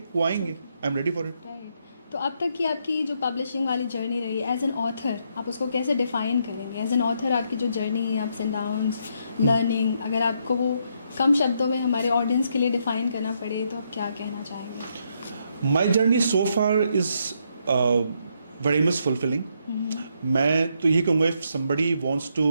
वो आएंगे, आई am ready for it. Right. तो अब तक की आपकी जो पब्लिशिंग वाली जर्नी रही एज एन ऑथर, आप उसको कैसे डिफाइन करेंगे? एज एन ऑथर आपकी जो जर्नी है, अप्स एंड डाउन्स, लर्निंग, अगर आपको वो कम शब्दों में हमारे ऑडियंस के लिए डिफाइन करना पड़े तो आप क्या कहना चाहेंगे? My journey so far is very much fulfilling. मैं तो यही कहूँगा, if somebody wants to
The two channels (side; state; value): both; inverted; correlation -0.76